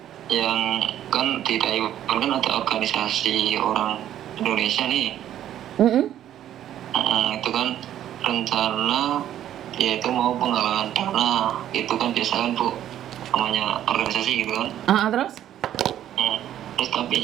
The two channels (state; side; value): quieter; left; 11.4 dB